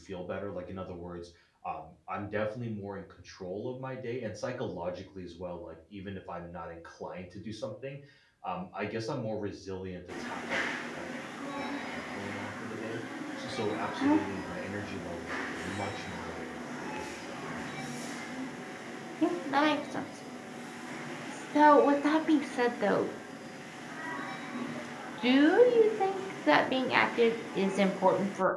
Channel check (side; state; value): both; identical; correlation 1.00